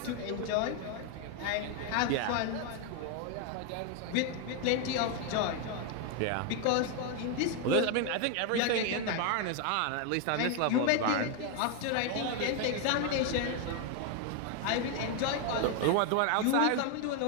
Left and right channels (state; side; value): different; both; correlation 0.01